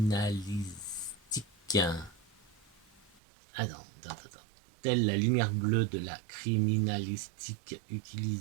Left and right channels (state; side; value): drops out; left; at 3.2 s